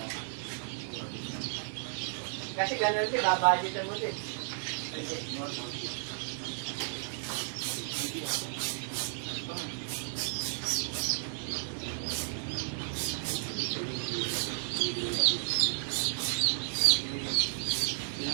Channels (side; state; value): left; silent; digital silence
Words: Kasi ganun din, babudgetan mo din.